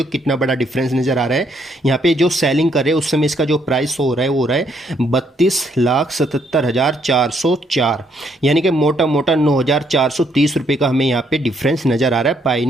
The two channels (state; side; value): normal; both; correlation 0.71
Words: हो कितना बड़ा डिफरेंस नज़र आ रहा है। यहाँ पे जो सेलिंग कर रहे हैं उस समय इसका जो प्राइस हो रहा है वो हो रहा है 32,77,404, यानी कि मोटा मोटा 9,430 रुपये का हमें यहाँ पे डिफरेंस नज़र आ रहा है